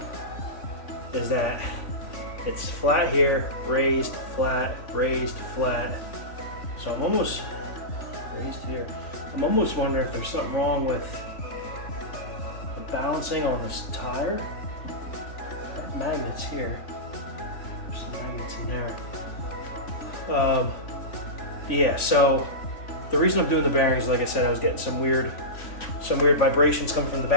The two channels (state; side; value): late; right; 3.5 ms